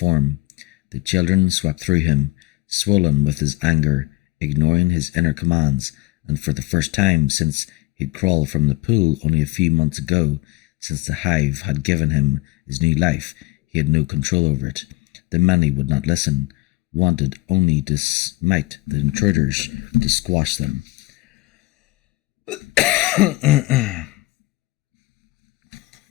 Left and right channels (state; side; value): quieter; right; 21.4 dB